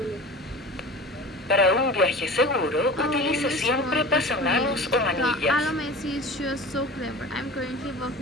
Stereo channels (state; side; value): normal; both; correlation 0.37